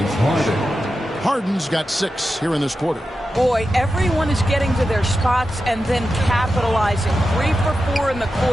Harden's got 6 here in this quarter. Boy, everyone is getting to their spots and then capitalizing. 3 for 4 in the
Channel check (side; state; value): both; normal; correlation 0.91